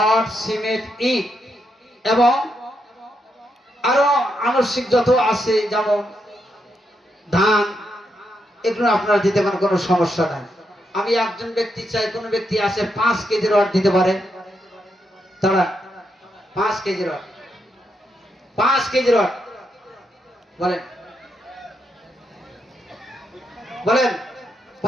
সিমেন্ট ইট এবং আরো আনুষঙ্গিক যত আছে যেমন ধান, এগুলো আপনারা দিতে পারেন, কোনো সমস্যা নাই। আমি একজন ব্যক্তি চাই, কোন ব্যক্তি আছে 5 কেজি রড দিতে পারে? তারা 5 কেজি রড, 5 কেজি রড বলেন, বলেন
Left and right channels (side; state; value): both; normal; correlation 0.81